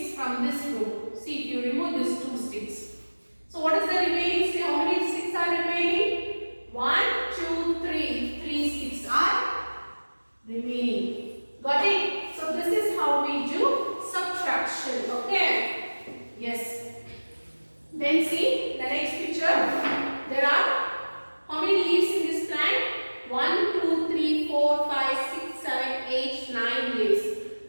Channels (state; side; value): inverted; both; correlation -1.00